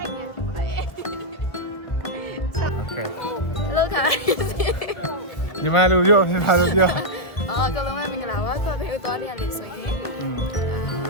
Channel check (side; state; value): right; late; 1.7 ms